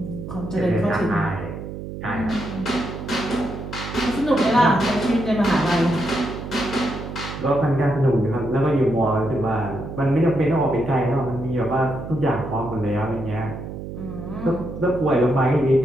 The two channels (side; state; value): right; noise; hum, 9 dB below the sound